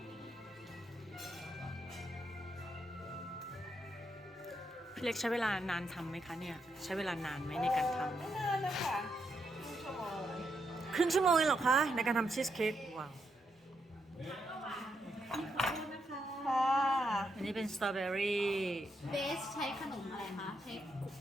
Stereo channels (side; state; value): both; normal; correlation 0.80